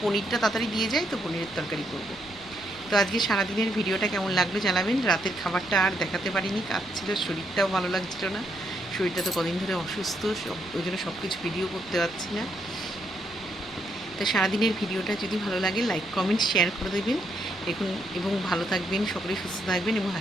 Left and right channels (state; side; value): noise; right; rumble, 24 dB below the sound